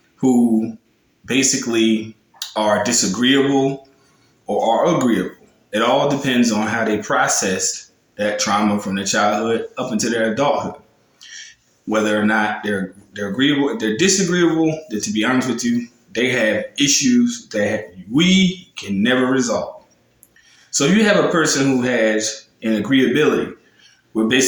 who basically are disagreeable or are agreeable, it all depends on how they process that trauma from their childhood up into their adulthood. Whether or not they're agreeable, if they're disagreeable, then to be honest with you, they have issues that we can never resolve. So if you have a person who has an agreeability, we're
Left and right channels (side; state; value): both; identical; correlation 1.00